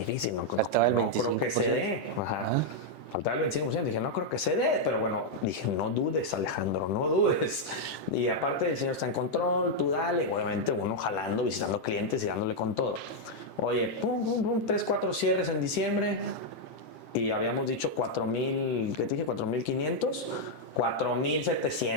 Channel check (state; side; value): late; right; 7.6 ms